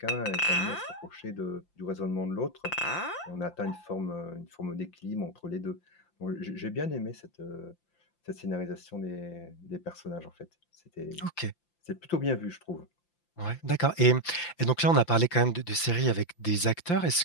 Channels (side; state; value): right; late; 5.8 ms